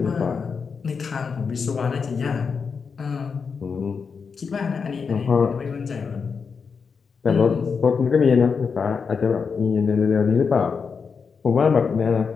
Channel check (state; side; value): quieter; right; 5.6 dB